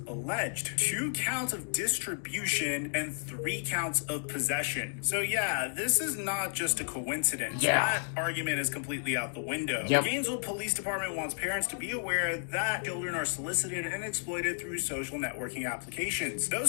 alleged. 2 counts of distribution and 3 counts of possession. So yeah, this is not just a coincidence. That argument is completely out the window. The Gainesville Police Department wants parents to be aware that children are solicited and exploited through social networking applications.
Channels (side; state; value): right; silent; digital silence